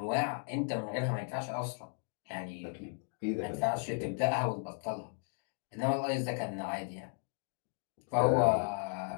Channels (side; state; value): right; silent; 54 dB below the other